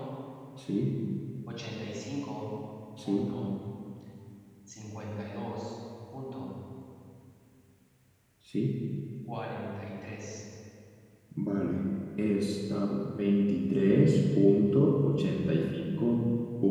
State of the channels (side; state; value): both; identical; correlation 1.00